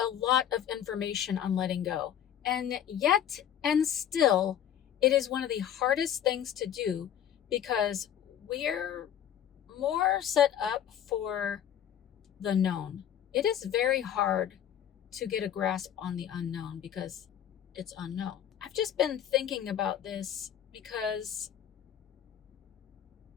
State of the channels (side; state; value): right; quieter; 10.0 dB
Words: lot of information on letting go, and yet and still it is one of the hardest things to do because we're more set up for the known. It is very hard to get a grasp on the unknown because it's unknown. I've just been thinking about this because